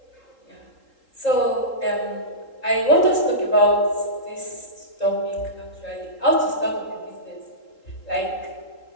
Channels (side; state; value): right; late; 3.8 ms